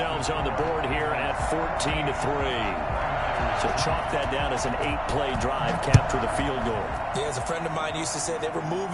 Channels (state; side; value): identical; both; correlation 1.00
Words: on the board here at 14-3. So chalk that down as an 8-play drive, capture the field goal. Yeah, as a friend of mine used to say, they were